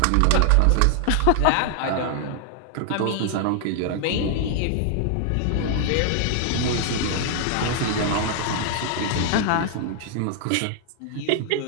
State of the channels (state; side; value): different; both; correlation 0.00